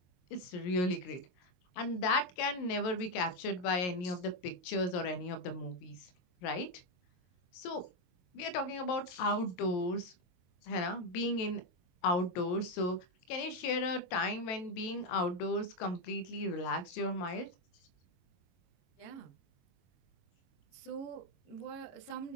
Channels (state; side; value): late; right; 22 ms